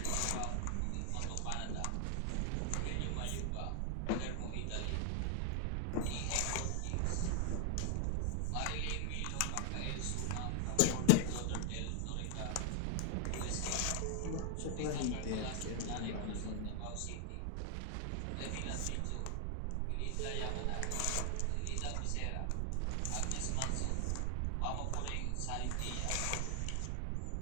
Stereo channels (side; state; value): both; different; correlation 0.00